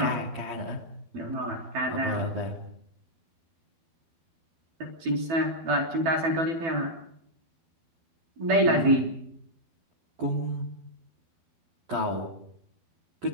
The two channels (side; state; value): left; late; 12 ms